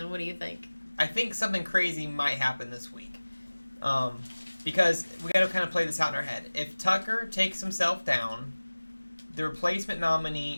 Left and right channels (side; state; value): both; inverted; correlation -1.00